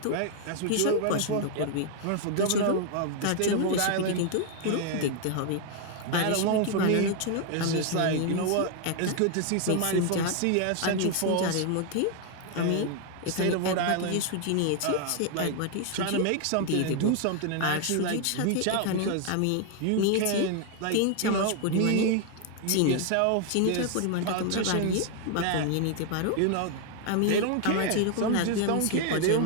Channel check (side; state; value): both; different; correlation 0.00